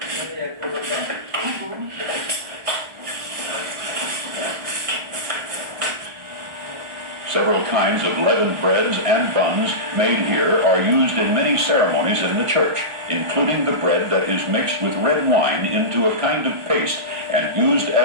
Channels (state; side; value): late; left; 1.4 ms